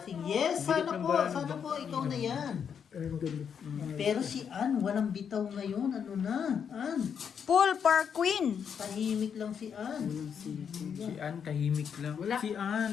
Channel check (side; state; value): right; quieter; 7.4 dB